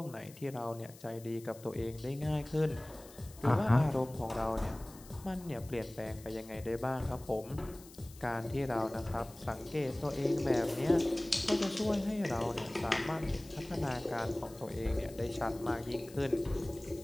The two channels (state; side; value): noise; left; hiss, 20 dB below the sound